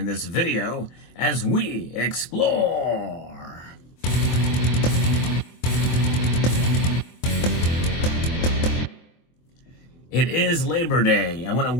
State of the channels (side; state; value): right; late; 24 ms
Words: this video as we explore. It is Labor Day. I want to